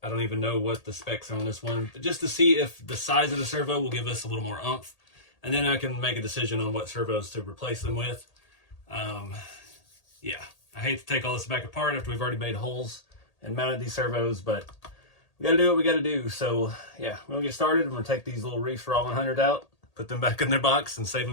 I don't even know what the specs are on this one, but just to see if the size of the servo will give us a little more oomph, and then I can make a decision on what servos to replace them with. Yeah, I hate to take all this back apart after we've already made holes and mounted these servos, but we gotta do what we gotta do. So yeah, we're gonna get started. I'm gonna take these little Reefs Raw 100 out, put them back in their box, and save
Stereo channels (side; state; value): right; late; 1.8 ms